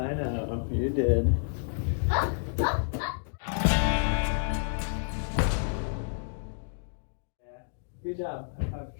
know, you did. Good job.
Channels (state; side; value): silent; right; digital silence